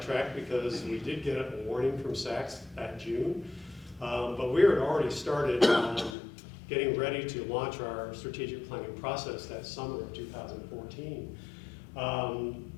because we did get a warning from SACS that June. But we had already started getting ready to launch our strategic planning process that summer of 2014.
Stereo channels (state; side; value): drops out; right; at 6.2 s